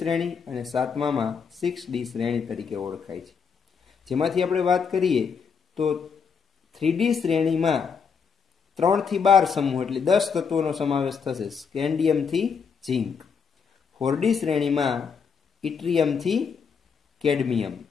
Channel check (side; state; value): right; quieter; 6.1 dB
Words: અને 7મામાં 6D શ્રેણી તરીકે ઓળખાય છે. જેમાંથી આપણે વાત કરીએ તો 3D શ્રેણીમાં 3 થી 12 સમૂહ એટલે 10 તત્વોનો સમાવેશ થશે, સ્કેન્ડિયમથી ઝિંક. 4D શ્રેણીમાં ઇટ્રિયમથી કેડમિયમ.